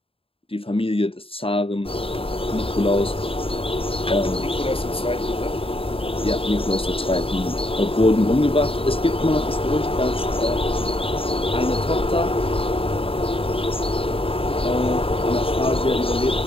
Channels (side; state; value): right; late; 0.27 ms